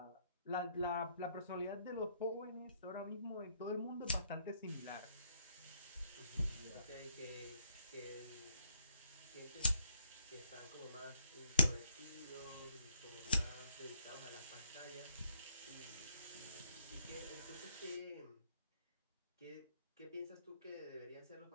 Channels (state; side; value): inverted; both; correlation -0.71